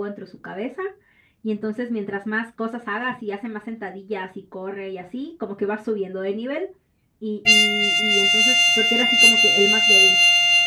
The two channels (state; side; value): identical; both; correlation 1.00